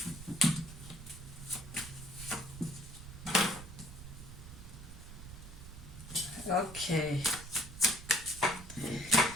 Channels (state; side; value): noise; right; rumble, 13 dB below the sound